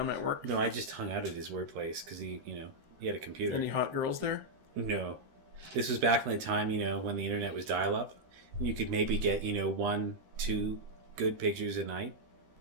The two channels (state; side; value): late; left; 13 ms